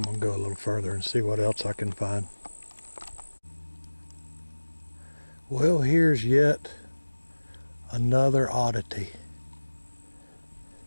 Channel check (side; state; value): both; inverted; correlation -1.00